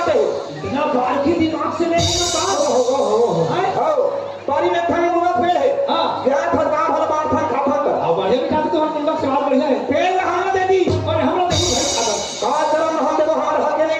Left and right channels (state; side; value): identical; both; correlation 1.00